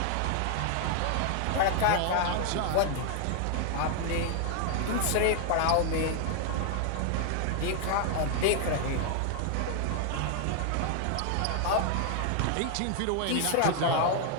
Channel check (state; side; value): different; both; correlation 0.00